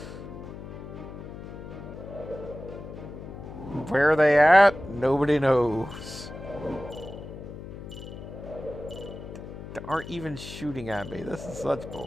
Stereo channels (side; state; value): left; noise; hum, 11 dB below the sound